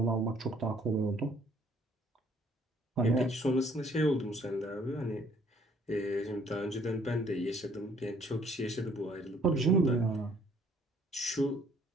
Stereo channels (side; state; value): both; normal; correlation 0.61